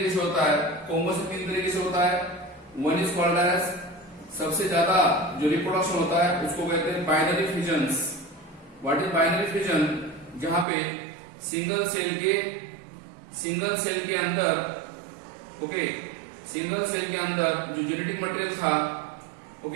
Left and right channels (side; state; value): left; drops out; at 10.7 s